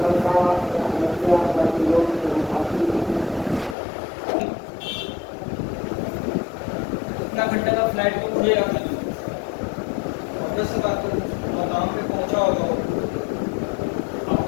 कितना घंटे का फ्लाइट को खुलेगा फिर, ऑब्वियस सी बात है, मकाम पे पहुंचा होगा वो,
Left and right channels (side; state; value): right; drops out; at 3.8 s